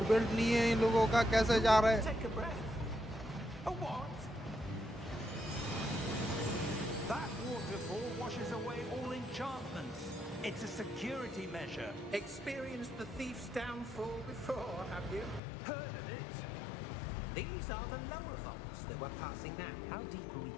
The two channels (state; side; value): drops out; right; at 15.4 s